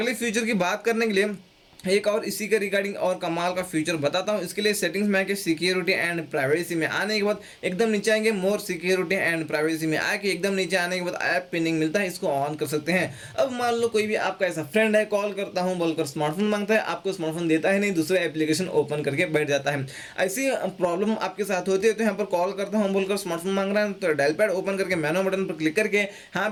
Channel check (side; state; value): both; identical; correlation 1.00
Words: फीचर की बात करने के लिए एक और इसी के रिगार्डिंग और कमाल का फीचर बताता हूं। इसके लिए सेटिंग्स में आके सिक्योरिटी एंड प्राइवेसी में आने के बाद एकदम नीचे आएंगे, मोर सिक्योरिटी एंड प्राइवेसी में आके एकदम नीचे आने के बाद ऐप पिनिंग मिलता है, इसको ऑन कर सकते हैं। अब मान लो कोई भी आपका ऐसा फ्रेंड है, कॉल करता हूं बोलकर स्मार्टफोन मांगता है, आपको स्मार्टफोन देता है नहीं, दूसरा एप्लीकेशन ओपन करके बैठ जाता है। ऐसी प्रॉब्लम आपके साथ होती है तो यहाँ पर कॉल करता हूँ बोलकर स्मार्टफोन मांग रहा है तो डायल पैड ओपन करके मेनू बटन पर क्लिक करके यहाँ